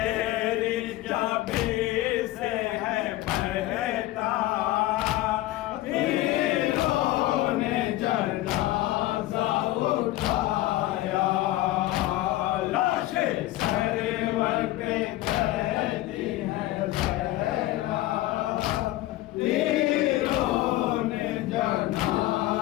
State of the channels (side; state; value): right; quieter; 16.4 dB